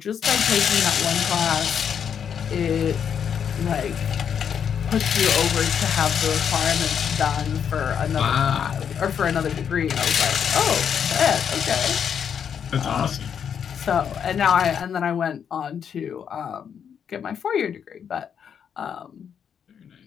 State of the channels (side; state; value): right; quieter; 7.8 dB